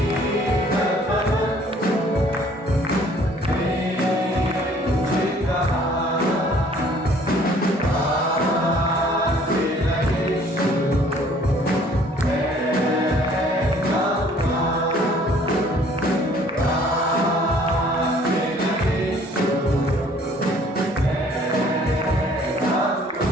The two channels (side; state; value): both; normal; correlation 0.57